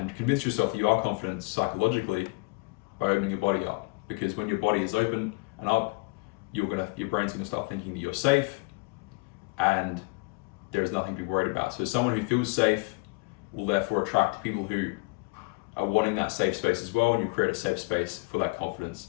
convince yourself that you are confident psychologically by opening your body up. Because when your body is open and up, your brain's gonna start thinking that you're safe and there's nothing to be worried about. So someone who feels safe will therefore attract people who are wanting that safe space as well, and you create a safe space for that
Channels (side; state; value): right; quieter; 28.3 dB